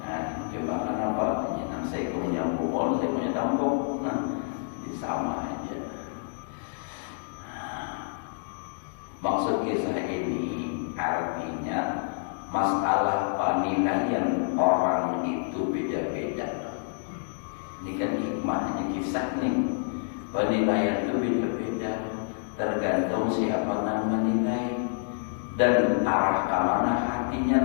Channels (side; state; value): right; silent; 59 dB below the other